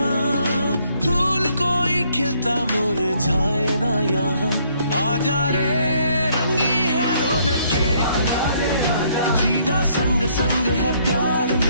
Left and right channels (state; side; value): inverted; both; correlation -0.67